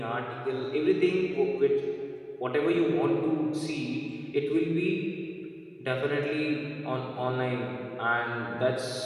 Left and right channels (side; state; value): both; identical; correlation 1.00